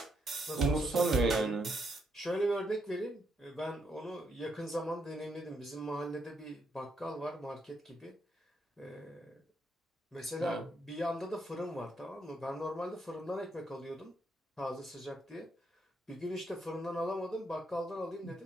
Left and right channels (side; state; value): both; normal; correlation 0.77